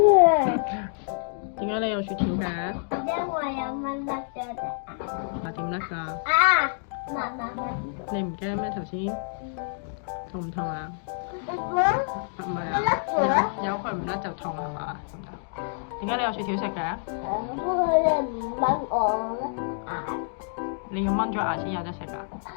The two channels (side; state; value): right; silent; digital silence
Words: 點解你有雪條嘅？因為有蚊甩咗隻啊，點甩㗎？啊！你唔驚咩頭先？痛唔痛啊？唔係啊，有佢唔甩就痛係嘛？點解你有雪條食嘅？不過你唔掹我牙。你要掹咗牙先有得食㗎？